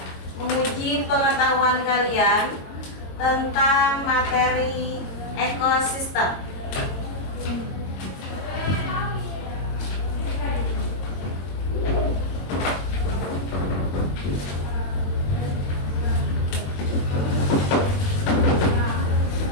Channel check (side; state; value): right; late; 22 ms